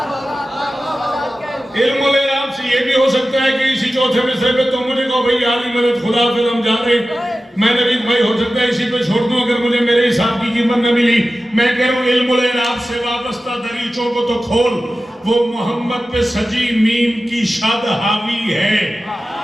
इल्म और इराब से ये भी हो सकता है कि इसी चौथे मिसरे पे तुम मुझे कहो भाई आली मदद खुदा फिर हम जा रहे, मैं नबी भाई हो सकता है इसी पे छोड़ दूं अगर मुझे मेरे हिसाब की कीमत न मिली। मैं कह रहा हूं इल्म और इराब से वाबस्ता दरीचों को तो खोल। वो मोहम्मद पे सजी मीम की शद हावी है,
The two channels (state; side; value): normal; both; correlation 0.95